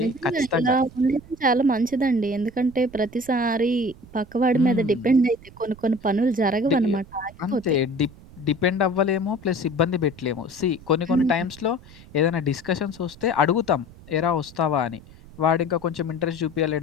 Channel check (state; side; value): noise; right; rumble, 21 dB below the sound